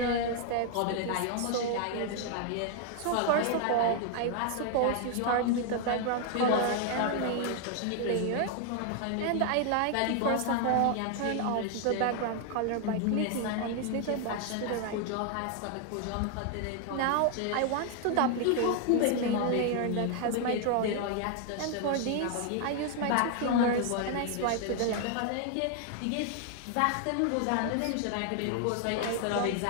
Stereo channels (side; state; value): both; different; correlation 0.00